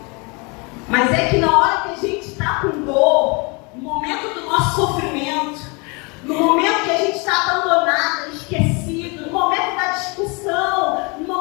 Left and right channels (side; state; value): right; quieter; 30.1 dB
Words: Mas é que na hora que a gente está com dor, no momento do nosso sofrimento, no momento que a gente está abandonada, esquecido, no momento da discussão, no